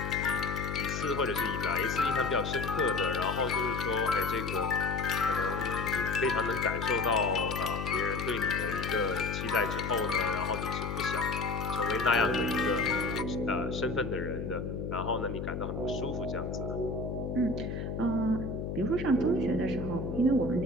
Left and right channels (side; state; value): left; noise; hum, 4 dB below the sound